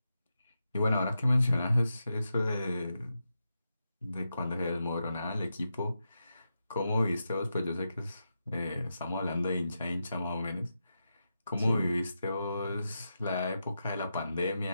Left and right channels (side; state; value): both; inverted; correlation -0.88